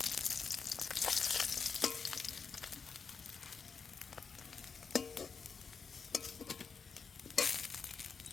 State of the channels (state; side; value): quieter; right; 5.6 dB